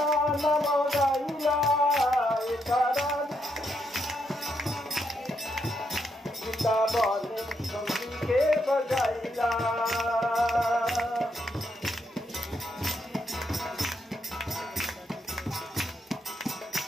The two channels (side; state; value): both; normal; correlation 0.79